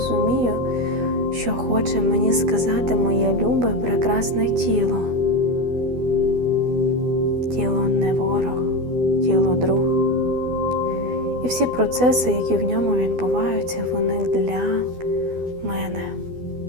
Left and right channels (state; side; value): late; left; 12 ms